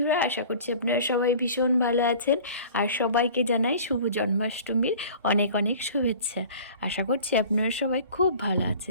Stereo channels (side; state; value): both; inverted; correlation -0.44